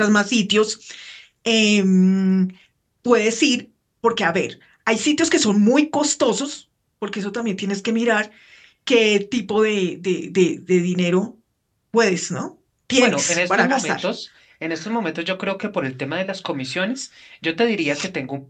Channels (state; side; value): identical; both; correlation 1.00